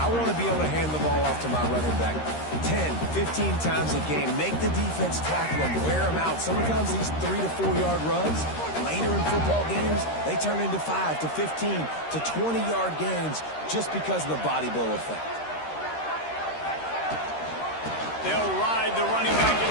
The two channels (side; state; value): right; late; 13 ms